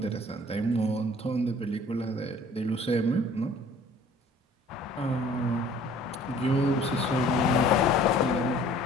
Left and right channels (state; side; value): normal; both; correlation 0.52